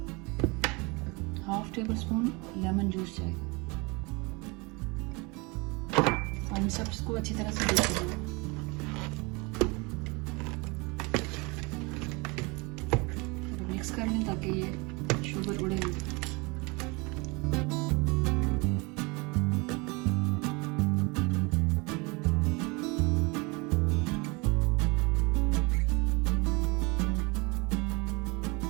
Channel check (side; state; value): left; quieter; 27.5 dB